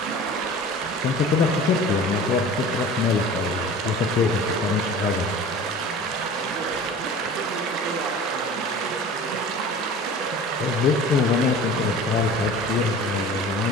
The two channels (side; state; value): both; normal; correlation 0.40